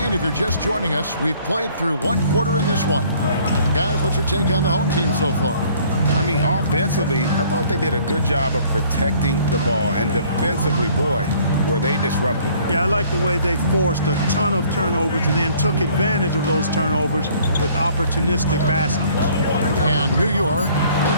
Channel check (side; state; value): both; inverted; correlation -0.57